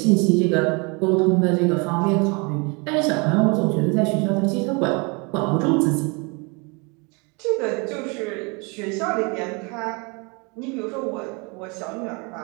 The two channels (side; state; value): left; quieter; 30.4 dB